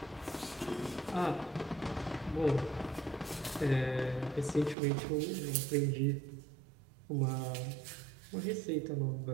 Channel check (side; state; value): left; drops out; at 4.8 s